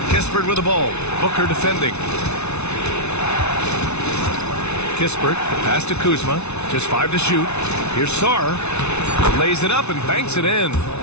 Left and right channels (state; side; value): late; right; 0.81 ms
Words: Kispert with the ball. Booker defending. Kispert, the pass to Kuzma. Just 5 to shoot. Here's Sarr. Lays it up and banks it in.